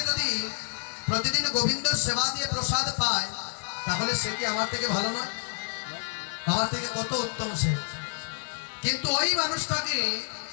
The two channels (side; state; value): right; silent; 55 dB below the other